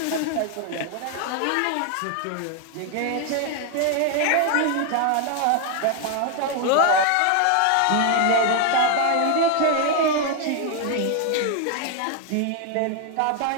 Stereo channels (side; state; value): both; different; correlation 0.01